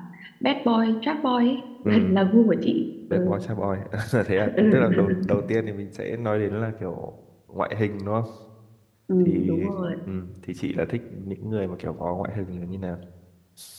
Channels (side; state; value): both; identical; correlation 1.00